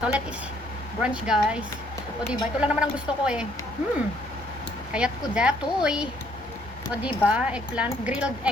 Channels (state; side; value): normal; both; correlation 0.66